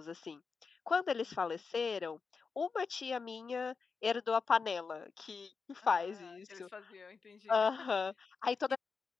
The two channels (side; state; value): right; quieter; 5.1 dB